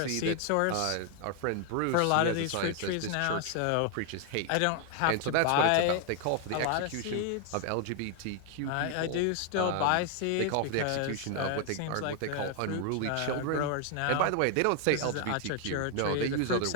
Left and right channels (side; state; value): both; different; correlation 0.00